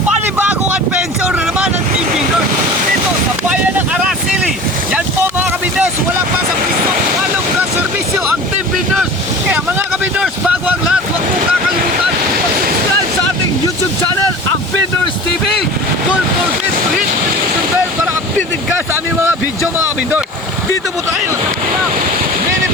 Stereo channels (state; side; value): normal; both; correlation 0.38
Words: panibagong adventure na naman ng Team Bindors dito sa bayan ng Araceli. Yan po mga kabindors, wala pa sa piso, walong na serbisyo ang Team Bindors. Kaya mga kabindors, bago ang lahat, huwag mong kakalimutan mag-subscribe sa ating YouTube channel, ang Bindors TV. Don't forget to hit the notification bell para updated ka sa aming mga video mga kabindors. Dito po tayo sa Pinang Mini